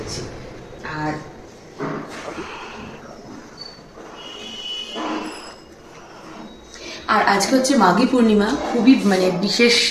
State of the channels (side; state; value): both; identical; correlation 1.00